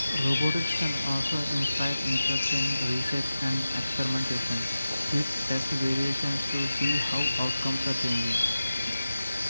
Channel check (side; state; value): both; inverted; correlation -0.93